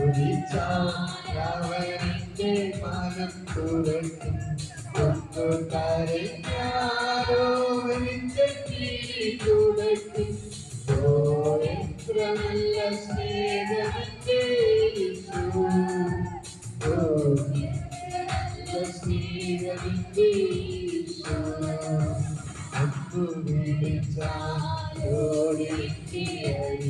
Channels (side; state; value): both; identical; correlation 1.00